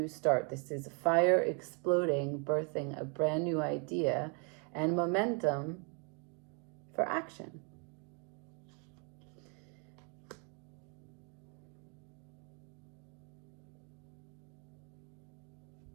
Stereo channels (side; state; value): left; quieter; 37.3 dB